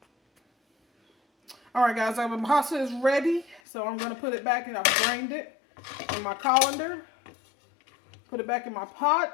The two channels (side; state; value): right; drops out; at 3.6 s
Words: Alright guys, my pasta is ready. So I'm going to put it back, and I've drained it in my colander. Put it back in my